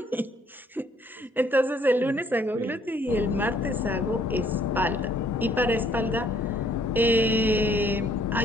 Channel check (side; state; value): both; normal; correlation 0.63